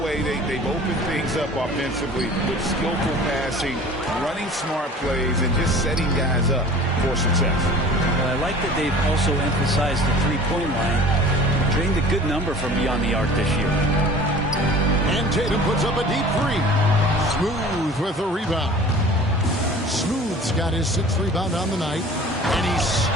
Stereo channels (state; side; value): normal; both; correlation 0.44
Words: they've opened things up offensively with skillful passing, running smart plays, and just setting guys up for success. Well, I like that they've also emphasized the three-point line. Drained a good number from beyond the arc this year. And Tatum puts up a deep three. Smooth with a rebound. Smooth's got his 6th rebound on the night, and he